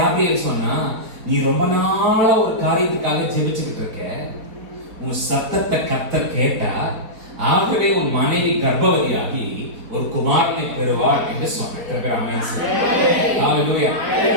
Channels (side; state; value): left; late; 4.8 ms